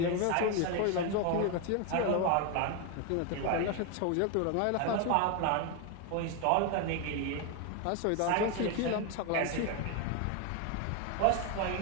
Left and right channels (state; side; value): different; both; correlation 0.01